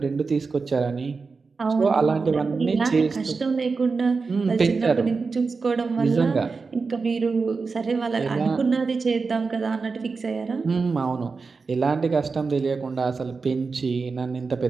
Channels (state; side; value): quieter; left; 4.5 dB